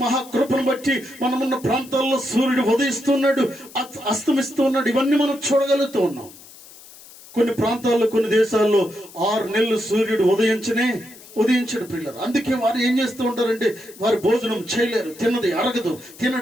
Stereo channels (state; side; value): noise; left; hiss, 20 dB below the sound